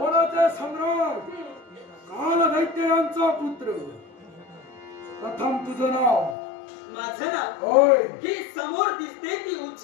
सम्राट काल दैत्य यांचा पुत्र. प्रथम तुझं नाव. माझं नाव होय. ही समोर दिसते ती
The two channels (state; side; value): drops out; right; at 6.4 s